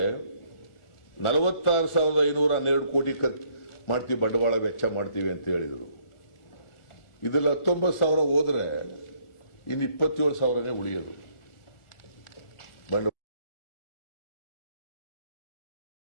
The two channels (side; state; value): right; late; 1.4 ms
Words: 46,512 ಕೋಟಿ ಮಾಡ್ತೀವಿ, ಬಂಡವಾಳ ವೆಚ್ಚ ಮಾಡ್ತೀವಿ ಅಂತ ಹೇಳಿದರು. ಇದೆಲ್ಲ 19,000 ಹೋದ್ರೆ ಇನ್ನು 27,000ನೇ ಉಳಿಯೋದು